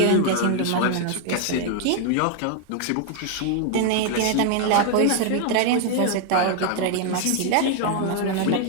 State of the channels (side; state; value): both; different; correlation 0.00